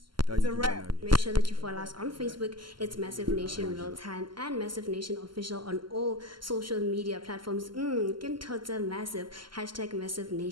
It's a wrap. Make sure that you follow us on Facebook. It's Massive Nation Real Time and Massive Nation Official on all social media platforms. Massive. #Massive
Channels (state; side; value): late; left; 0.72 ms